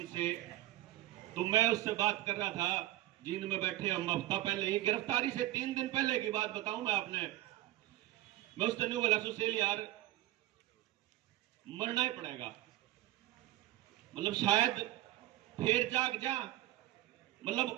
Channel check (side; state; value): left; quieter; 15.2 dB